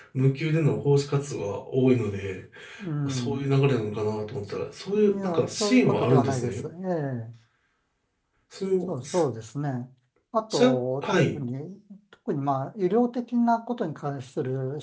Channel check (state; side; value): identical; both; correlation 1.00